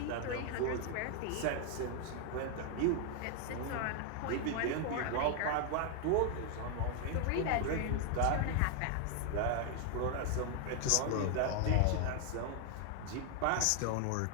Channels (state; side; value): different; both; correlation 0.00